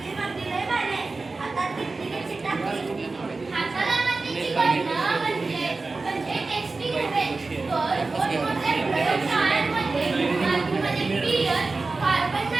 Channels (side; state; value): left; quieter; 3.7 dB